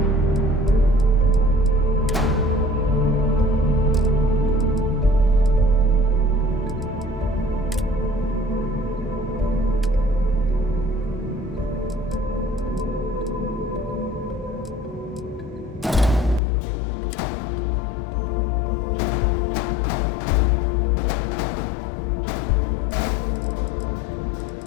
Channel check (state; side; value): drops out; right; at 16.4 s